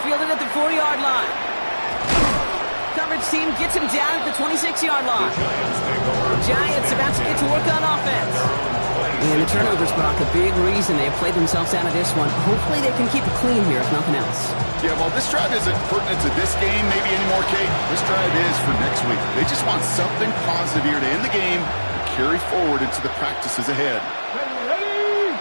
at the 40-yard line. Coverage team gets him down at the 26-yard line. The Giants about to get to work on offense. And the turnovers, Brock, a big reason they have played themselves out of this one. Hopefully they can keep it clean here, if nothing else. Yeah, well, this drive isn't pertinent to this game maybe anymore, Kate. This drive is for next week. They just want something positive here to end the game and carry forward into the practices ahead.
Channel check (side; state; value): both; inverted; correlation -1.00